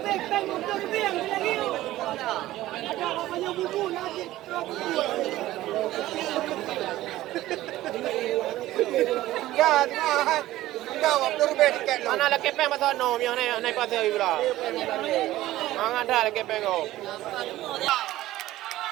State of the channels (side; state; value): left; quieter; 15.6 dB